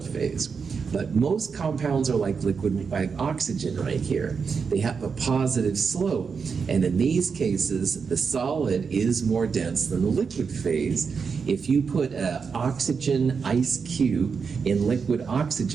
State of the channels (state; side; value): quieter; left; 5.7 dB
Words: phase. But most compounds are like liquid, like oxygen right here. They have a positive slope. And in these cases, the solid is more dense than the liquid phase. If you put an oxygen ice cube in liquid